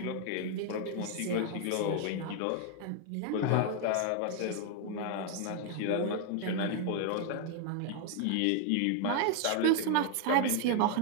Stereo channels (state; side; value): different; both; correlation 0.00